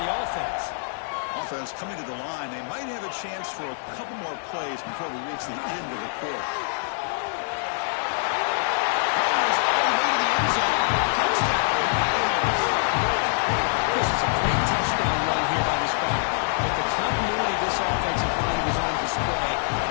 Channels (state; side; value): silent; right; digital silence